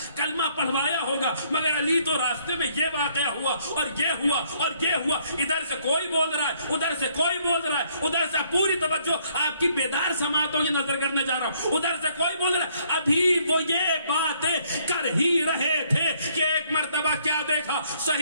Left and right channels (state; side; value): inverted; both; correlation -0.67